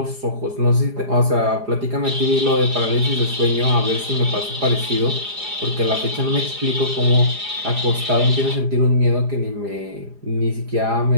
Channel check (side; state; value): left; late; 4.9 ms